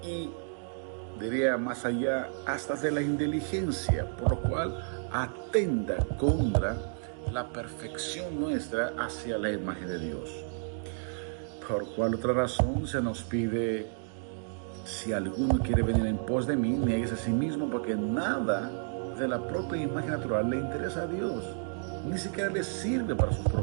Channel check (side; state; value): left; silent; digital silence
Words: y, diría más allá, hasta de la inteligencia, por lo cual atenta contra la perfección nuestra hacia la imagen de Dios. Por cual otra razón se nos pide: si alguno quiere venir en pos de mí, niegues a sí mismo, porque nada de la propia imagen natural le interesa a Dios, ni siquiera le sirve para sus